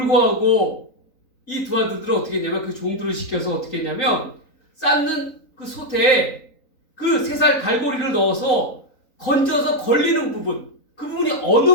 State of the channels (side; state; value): right; late; 3.9 ms